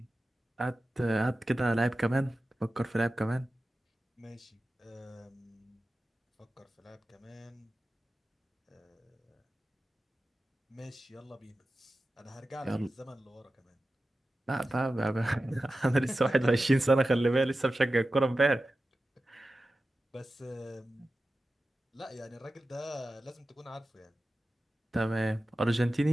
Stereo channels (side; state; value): both; normal; correlation 0.94